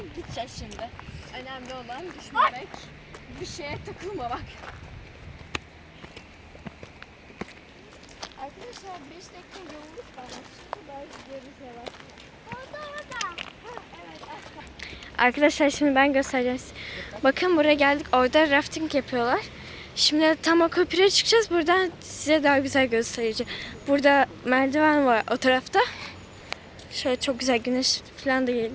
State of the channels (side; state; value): both; identical; correlation 1.00